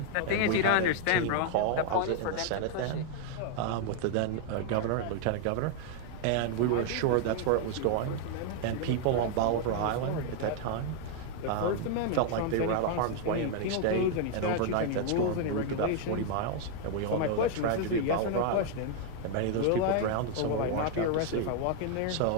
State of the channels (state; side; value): different; both; correlation 0.00